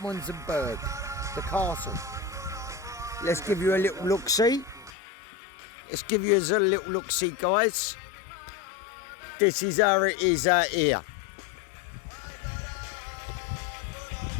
the castle. Let's give you a little look-see. Let's give you a little look-see, guys. This is how it is out here.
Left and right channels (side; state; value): right; drops out; at 4.9 s